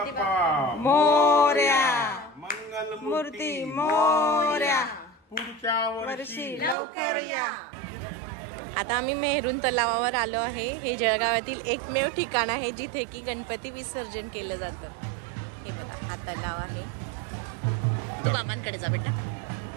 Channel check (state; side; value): drops out; left; at 6.8 s